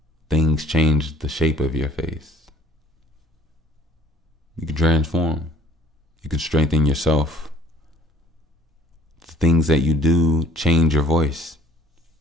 Things change the shape of your face. You can transform. You can strengthen yourself. The things that you do change your voice.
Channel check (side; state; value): both; normal; correlation 0.54